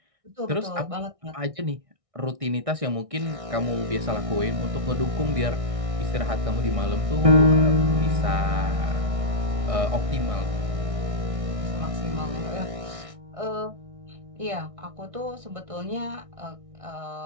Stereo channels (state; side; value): late; left; 1.6 ms